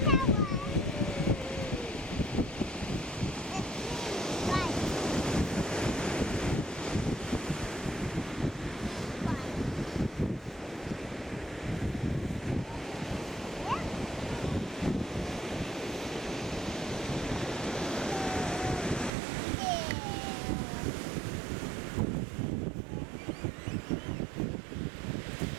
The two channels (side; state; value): left; drops out; at 19.1 s